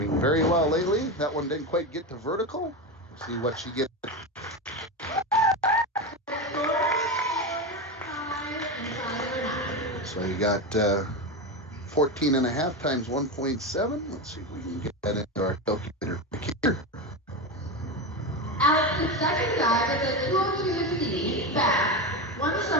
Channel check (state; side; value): normal; both; correlation 0.17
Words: very well lately. That one didn't quite get to vertical. We'll see what she gets. So you got 14 and a half times 1.7. Let's see if we can get that into our calculator here. Alex's second dive is a 202C back, one